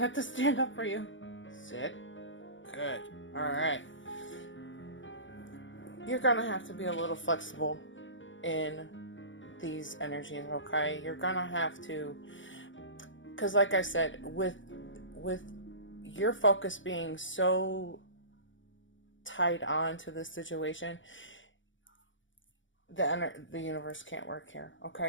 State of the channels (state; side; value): late; right; 0.56 ms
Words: to stand up for you. Sit. Good. Alright. You're gonna have to be a little flexible in these energies, okay? You're gonna have to, because like I said, with your focus being so tied on to this situation, the universe can't work here,